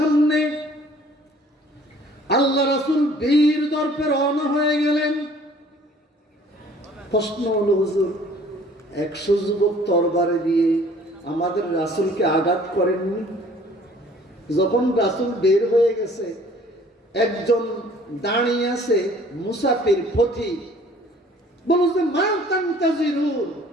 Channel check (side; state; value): both; normal; correlation 0.54